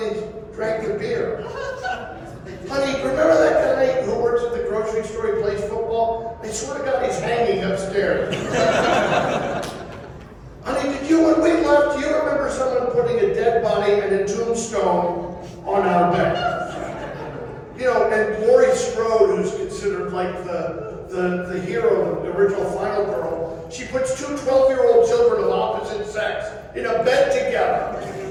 drank the beer. Honey, remember that guy who works at the grocery store, he plays football? I swear to God, he's hanging upstairs. Honey, when we left, do you remember someone putting a dead body and a tombstone on our bed? You know, and Laurie Strode, who's considered like the hero, the original Final Girl, she puts two 12-year-old children of opposite sex in a bed together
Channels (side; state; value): both; identical; correlation 1.00